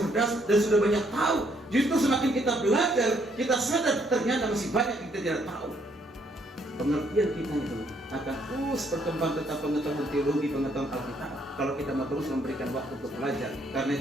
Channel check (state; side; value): normal; both; correlation 0.70